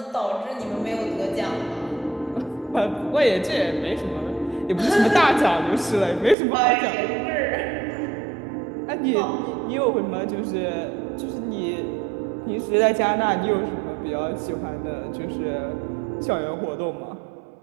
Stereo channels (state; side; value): drops out; left; at 6.4 s